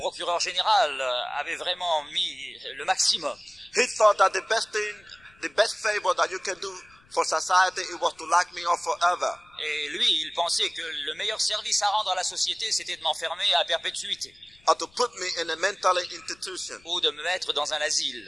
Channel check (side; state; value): left; noise; rumble, 30 dB below the sound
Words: général avait vraiment mis le maximum. He thought that the best favor that you can do for society, it was to lock me up forever. Et lui, il pensait que le meilleur service à rendre à la société, c'était de m'enfermer à perpétuité. Or to put me in a mental institution. Ou de me mettre dans un asile.